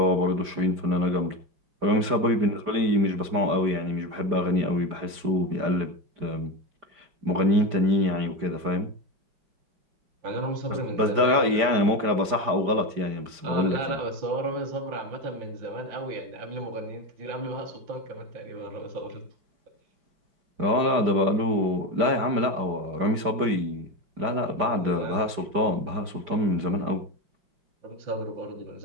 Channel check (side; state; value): left; late; 5.0 ms